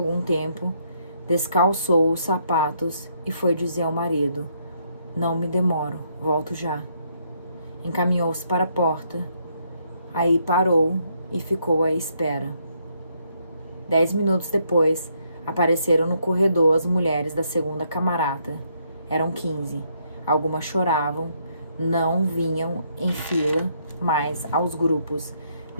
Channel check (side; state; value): both; inverted; correlation -0.73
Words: tempo, descalçou os sapatos e foi dizer ao marido: não me demoro, volto já. Encaminhou-se para a porta. Aí parou e ficou à espera. 10 minutos depois, apareceram no corredor as mulheres da segunda camarata. Eram 15. Algumas choravam, não vinham em fila, mas aos grupos,